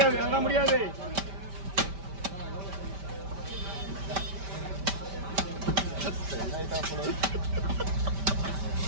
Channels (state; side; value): late; left; 5.1 ms